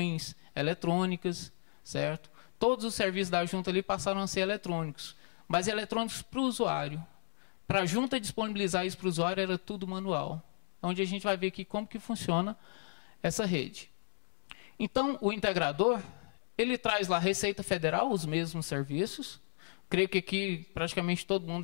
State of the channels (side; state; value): right; silent; 55 dB below the other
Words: eletrônicas, certo? Todos os serviços da junta ali passaram a ser eletrônicos, mas eletrônicos para o usuário. Para a junta disponibilizar isso para o usuário era tudo manual. Onde a gente vai ver aqui como que funciona essa rede. Então, o integrador, ele traz lá a Receita Federal, os mesmos serviços. Creio que aqui praticamente todo mundo